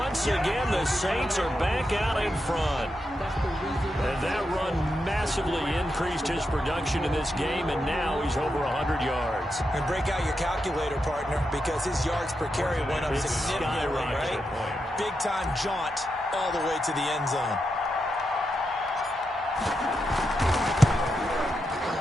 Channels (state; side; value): normal; both; correlation 0.86